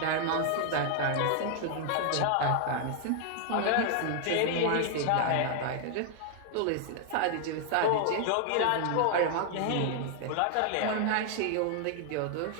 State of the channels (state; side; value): different; both; correlation 0.00